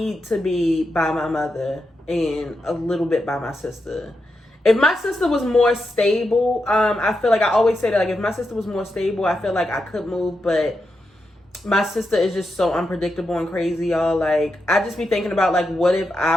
to be by my mother and a little bit by my sister. If my sister was more stable, I feel like I always say that, like, if my sister was more stable, I feel like I could move, but my sister is just so unpredictable and crazy, y'all. Like, I just be thinking about, like, what if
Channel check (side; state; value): both; normal; correlation 0.86